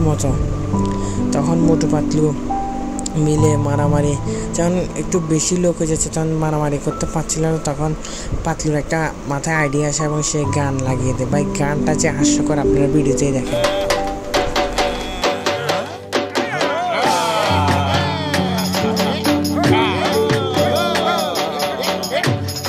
মতো। তখন মোটু পাতলু মিলে মারামারি যখন একটু বেশি লোক হয়ে যাচ্ছে, তখন মারামারি করতে পারছিল না। তখন পাতলুর একটা মাথায় আইডিয়া আসে এবং সে গান লাগিয়ে দেয়। ভাই গানটা যে হাস্যকর, আপনারা ভিডিওতেই দেখেন।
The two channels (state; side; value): identical; both; correlation 1.00